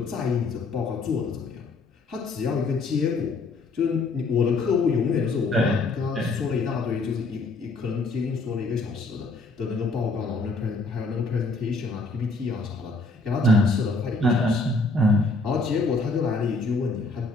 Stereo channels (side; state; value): right; quieter; 3.4 dB